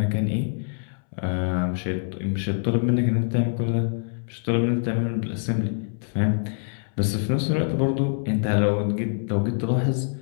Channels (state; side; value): silent; right; 62 dB below the other